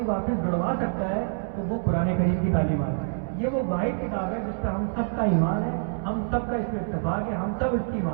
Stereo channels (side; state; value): left; silent; 61 dB below the other